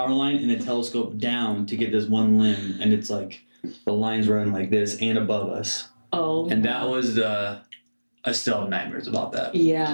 line and then telescoped down to get this one limb, and it's the line's running like this and above us. And that was I still have nightmares about that.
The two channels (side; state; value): both; inverted; correlation -1.00